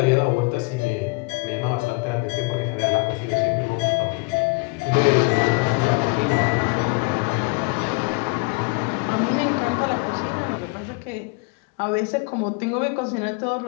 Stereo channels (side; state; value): right; quieter; 30.2 dB